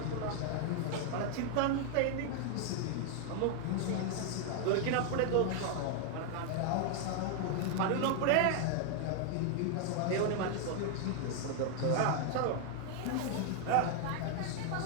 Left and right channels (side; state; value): both; different; correlation 0.00